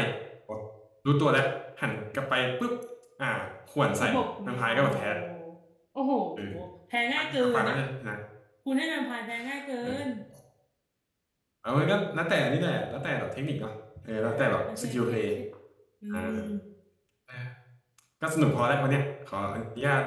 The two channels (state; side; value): identical; both; correlation 1.00